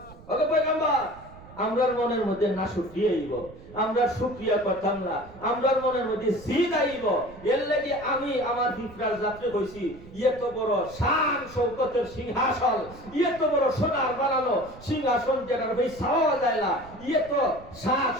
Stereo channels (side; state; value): right; noise; rumble, 19 dB below the sound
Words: ওগো পয়গম্বর, আমরার মনের মধ্যে না শুকরিয়া আইব, আমরা শুকরিয়া করতাম না, আমরার মনের মধ্যে জিদ আইব। এর লাগি আমি আমার ফিফরার যাত্রী কইছি, এত বড় শান শৌকতের সিংহাসন, এত বড় সোনার বানানো সিংহাসন যেটার ভাই ছাওয়া যায় না, এত সাজ